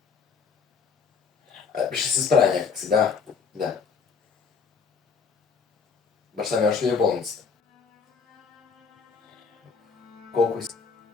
Ще се справя някакси, да. Баща ми още ли е в болницата? Колко иска?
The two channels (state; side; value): quieter; right; 5.5 dB